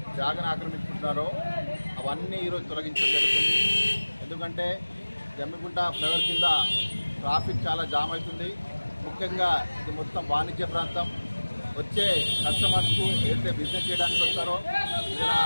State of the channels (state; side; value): inverted; both; correlation -1.00